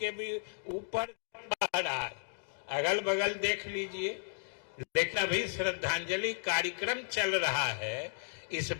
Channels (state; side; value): silent; right; digital silence